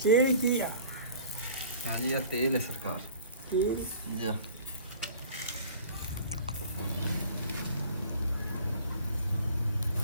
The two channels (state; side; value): inverted; both; correlation -0.46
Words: ਕੀ ਆ ਹਾਂਜੀ ਇਹ ਤੇਲ ਹੈ ਸਰਕਾਰ ਕੀ ਜੀ